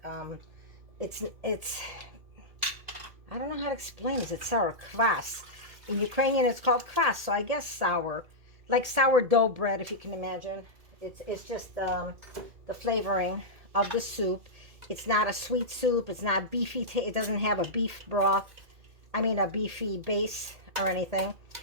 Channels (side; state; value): left; late; 2.2 ms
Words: It's I don't know how to explain this. It's sour. Kvass. In Ukrainian, it's called kvass, so I guess sour. Like sourdough bread, if you can imagine. It's just the flavoring of the soup. It's not a sweet soup. It's not beefy. It doesn't have a beef broth. I mean, a beefy base or anything.